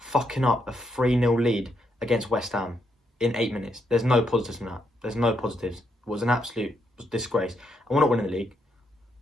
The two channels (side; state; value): both; normal; correlation 0.78